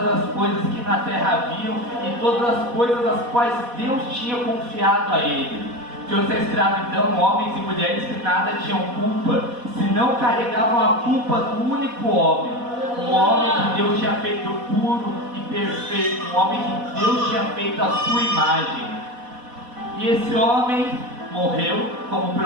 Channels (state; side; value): late; left; 4.1 ms